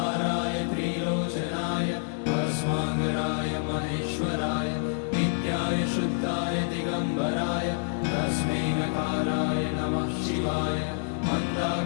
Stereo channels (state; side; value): silent; right; 60 dB below the other